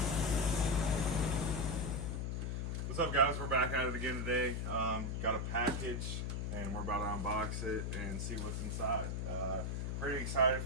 What's up, guys? We're back at it again today. Got a package, and we're about to unbox it and see what's inside. Pretty excited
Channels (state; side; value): noise; left; hum, 1 dB below the sound